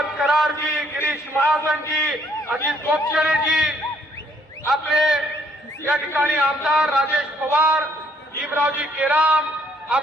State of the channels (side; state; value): both; normal; correlation 0.66